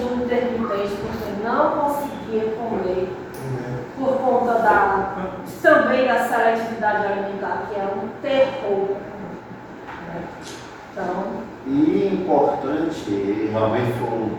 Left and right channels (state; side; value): identical; both; correlation 1.00